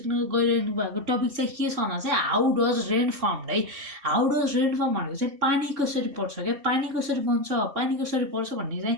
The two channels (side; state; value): left; late; 2.7 ms